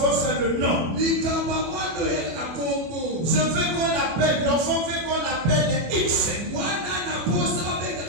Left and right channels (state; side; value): late; left; 25 ms